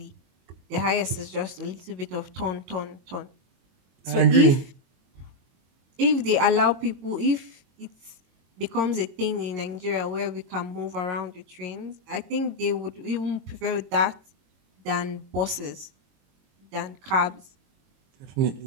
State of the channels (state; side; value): late; left; 22 ms